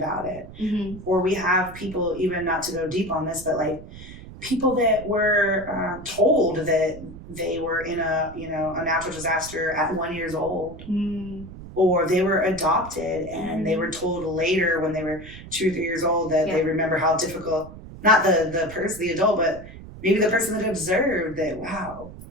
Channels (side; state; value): right; noise; rumble, 15 dB below the sound